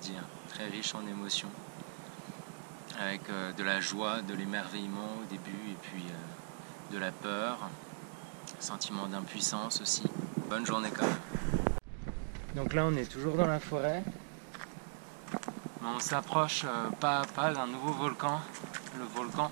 Très riche en émotions. Avec de la joie, de l'émerveillement au début et puis de la peur. Sentiment d'impuissance aussi. Bonne journée quand même. Donc là, on est toujours dans la forêt. Mais on s'approche pas à pas d'un nouveau volcan, le volcan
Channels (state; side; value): silent; left; digital silence